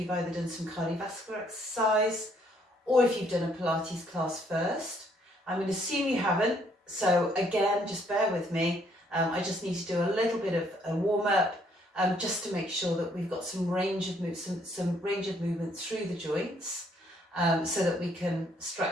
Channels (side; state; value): both; normal; correlation 0.67